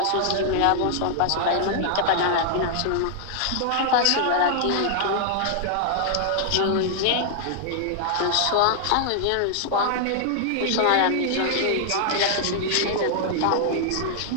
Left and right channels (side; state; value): both; different; correlation -0.01